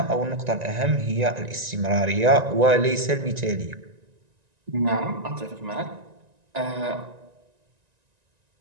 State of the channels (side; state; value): left; late; 1.9 ms